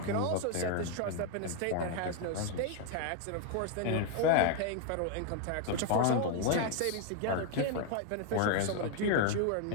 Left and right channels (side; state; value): both; different; correlation 0.01